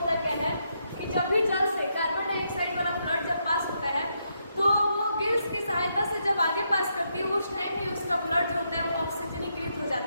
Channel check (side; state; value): both; inverted; correlation -0.79